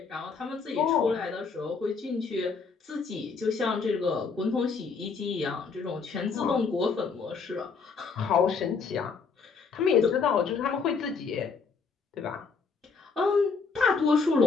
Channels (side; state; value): right; quieter; 5.0 dB